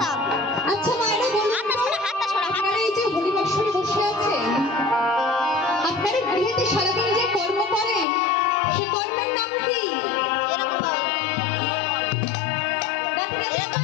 আচ্ছা মায়েরা বলুন, আপনারা এই যে হরিবাসরে বসে আছেন, আপনারা গৃহেতে সারাদিন যে কর্ম করেন সে কর্মের নাম কি?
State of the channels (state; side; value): drops out; right; at 8.1 s